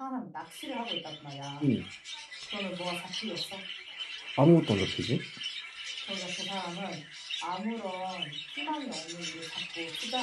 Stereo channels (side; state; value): both; identical; correlation 1.00